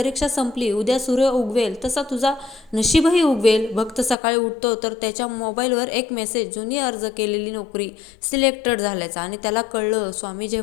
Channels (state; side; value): drops out; right; at 4.2 s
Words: संपली, उद्या सूर्य उगवेल तसा तुझा नशीबही उगवेल. भक्त सकाळी उठतो तर त्याच्या मोबाईलवर एक मेसेज, जुनी अर्ज केलेली नोकरी सिलेक्टेड झाल्याचा. आणि त्याला कळलं, स्वामी